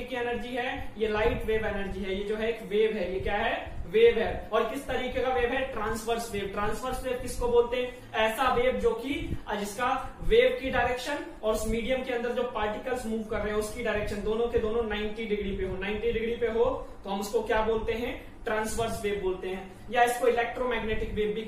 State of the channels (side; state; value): both; identical; correlation 1.00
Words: की एनर्जी है? ये लाइट वेव एनर्जी है। ये जो है एक वेव है, ये क्या है? वेव है। और किस तरीके का वेव है? Transverse wave. ट्रांसवर्स वेव किसको बोलते हैं? ऐसा वेव जो कि जिसका वेव की डायरेक्शन और उस मीडियम के अंदर जो पार्टिकल्स मूव कर रहे हैं उसकी डायरेक्शन दोनों के दोनों 90 डिग्री पे हो। 90 डिग्री पे हो तो हम उसको क्या बोलते हैं? ट्रांसवर्स वेव बोलते हैं, या इसको इलेक्ट्रोमैग्नेटिक वेव भी